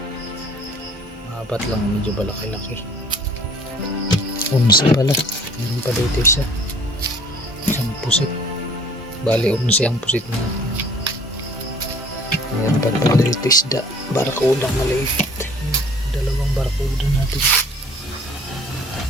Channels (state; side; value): normal; both; correlation 0.52